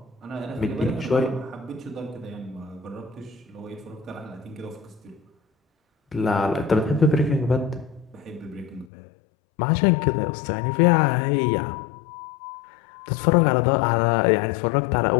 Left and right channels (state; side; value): drops out; right; at 8.8 s